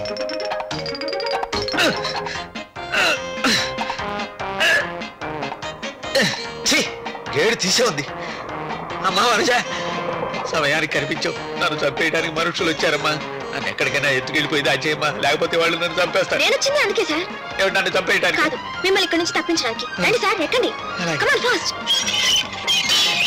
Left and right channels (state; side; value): identical; both; correlation 1.00